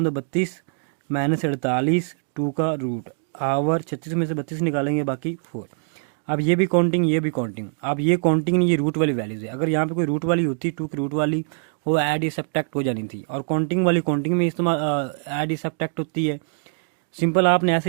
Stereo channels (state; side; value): silent; left; 63 dB below the other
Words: 2 32 माइनस 48 2 का रूट आवर 36 में से 32 निकालेंगे बाकी 4। अब ये भी काउंटिंग ये भी काउंटिंग, अब ये काउंटिंग नहीं, ये रूट वाली वैल्यूज है। अगर यहाँ पे कोई रूट वाली होती 2 की रूट वाली, वो ऐड या सब्ट्रैक्ट हो जानी थी। और काउंटिंग वाली काउंटिंग में इस्तेमाल ऐड या सब्ट्रैक्ट होती है। सिंपल आपने